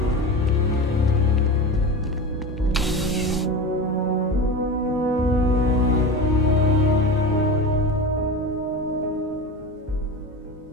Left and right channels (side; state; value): both; normal; correlation 0.27